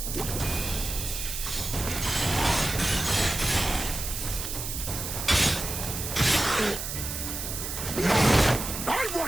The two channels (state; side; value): noise; right; hiss, 5 dB below the sound